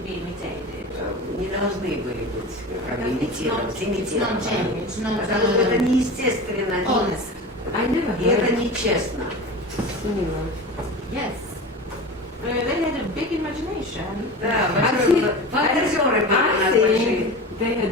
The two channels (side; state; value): both; normal; correlation 0.31